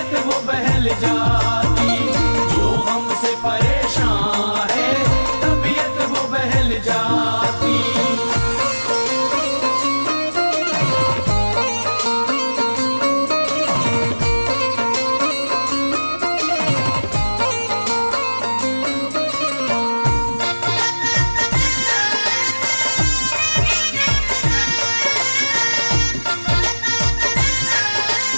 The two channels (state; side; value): inverted; both; correlation -1.00